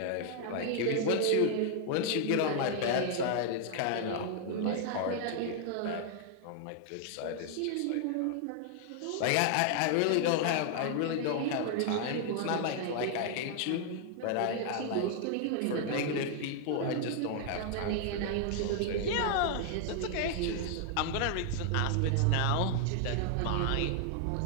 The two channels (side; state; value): both; different; correlation 0.00